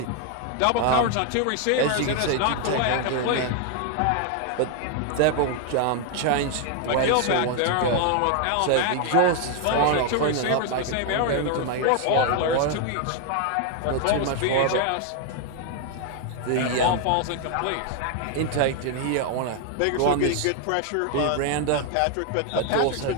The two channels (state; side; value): different; both; correlation 0.00